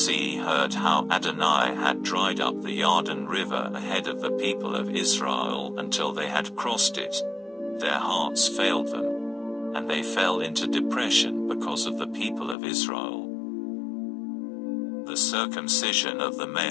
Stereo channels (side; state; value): right; drops out; at 12.6 s